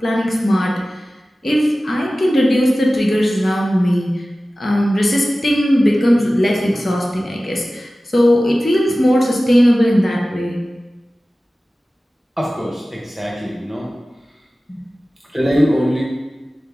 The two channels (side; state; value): both; normal; correlation 0.96